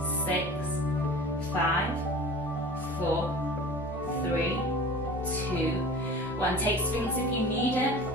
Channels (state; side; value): normal; both; correlation 0.40